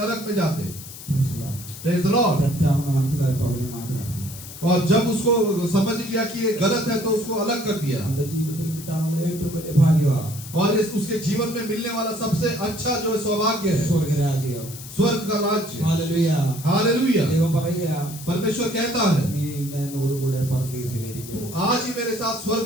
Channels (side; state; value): left; noise; hiss, 14 dB below the sound